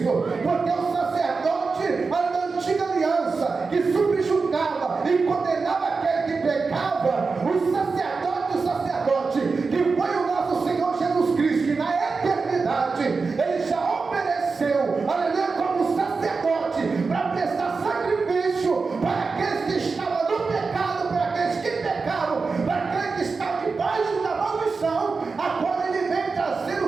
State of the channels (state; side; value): quieter; left; 4.5 dB